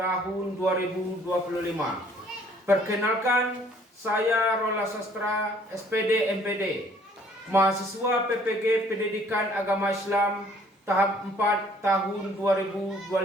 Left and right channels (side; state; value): both; normal; correlation 0.59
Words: 2025. Perkenalkan, saya Rola Sastra, SPD MPD, mahasiswa PPG Pendidikan Agama Islam tahap 4 tahun